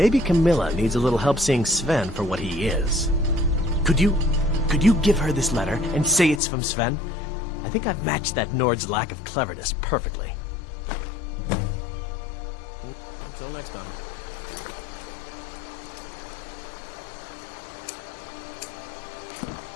Camilla needs a little help seeing Sven for what he is. Could you give her this letter and say it's from Sven? I think I've matched that Nord's lack of cleverness perfectly. Until next time.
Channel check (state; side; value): drops out; right; at 6.4 s